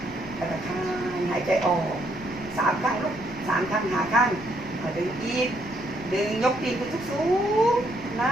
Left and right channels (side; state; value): left; noise; rumble, 18 dB below the sound